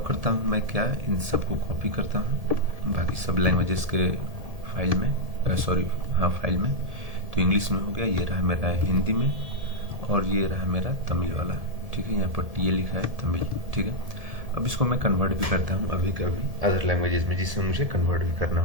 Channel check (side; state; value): left; late; 1.7 ms